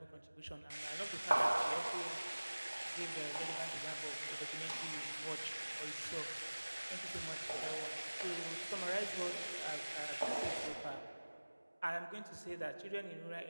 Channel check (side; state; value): both; inverted; correlation -1.00